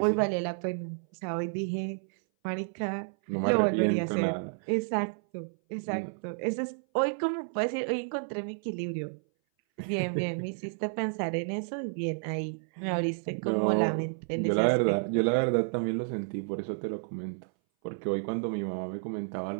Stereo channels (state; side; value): silent; left; 57 dB below the other